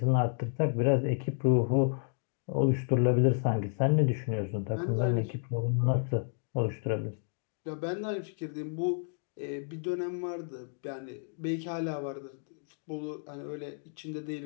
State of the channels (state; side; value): silent; right; 57 dB below the other